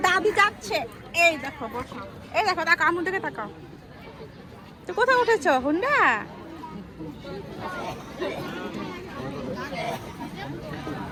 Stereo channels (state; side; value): identical; both; correlation 1.00